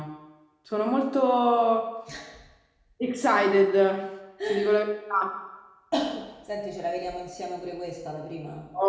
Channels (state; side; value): identical; both; correlation 1.00